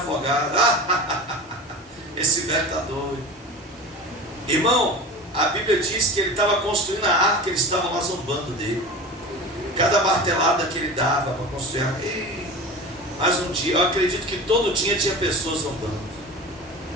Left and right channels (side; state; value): both; normal; correlation 0.33